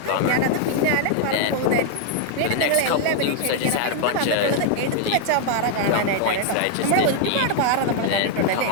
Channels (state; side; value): different; both; correlation 0.00